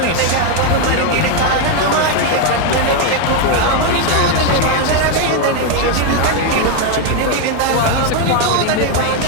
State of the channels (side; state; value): both; different; correlation 0.02